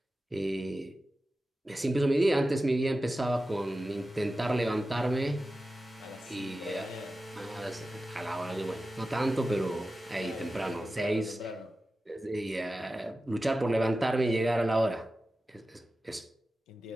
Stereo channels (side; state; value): both; normal; correlation 0.94